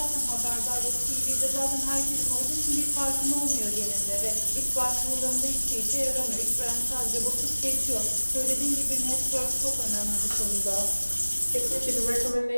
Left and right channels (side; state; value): both; inverted; correlation -1.00